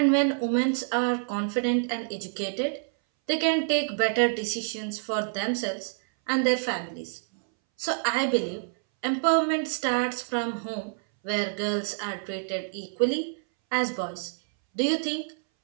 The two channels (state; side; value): silent; left; 60 dB below the other